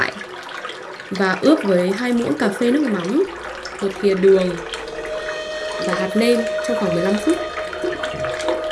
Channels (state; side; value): identical; both; correlation 1.00